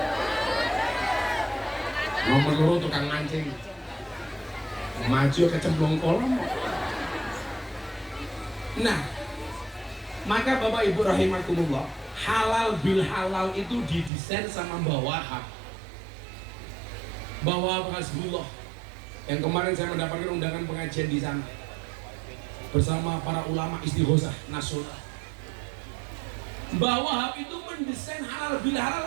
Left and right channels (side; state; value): left; drops out; at 14.1 s